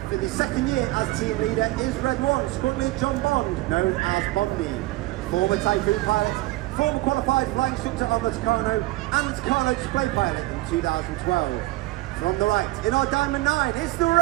for the second year as team leader is Red 1, Squad Lead John Bond, known as Bondy. Former Typhoon pilot, former qualified flying instructor on the Tucano and the Tucano display pilot in 2012. From the right, in our Diamond 9, it's the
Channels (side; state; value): left; quieter; 19.4 dB